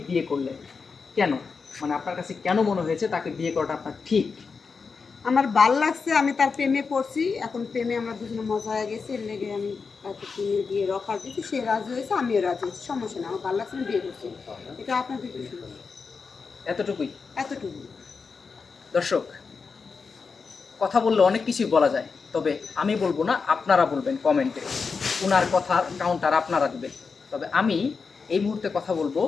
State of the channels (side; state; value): right; quieter; 5.0 dB